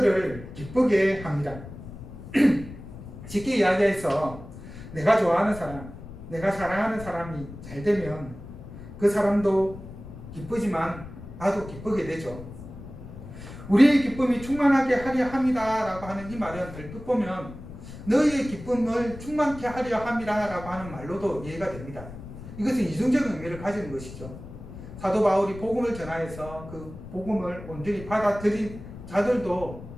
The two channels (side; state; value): left; noise; rumble, 13 dB below the sound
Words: 기쁘게 합니다. 쉽게 이야기해서 내가 좋아하는 사람, 내가 사랑하는 사람이 잘 되면 그 사람도 기쁘지만 나도 기쁘게 되죠. 우리의 기쁨이 충만하게 하려 합니다 라고 하는 이 말은 얼핏 보면 너희의 기쁨을 충만케 하려 함이라 라고 하는 말로도 이해가 됩니다. 이것은 이중적인 의미를 가지는 것이죠. 사도 바울이 복음을 전하여서 그 복음을 온전히 받아들인 자들도